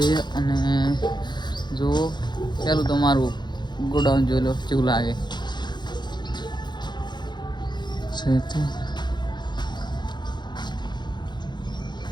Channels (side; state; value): right; late; 0.21 ms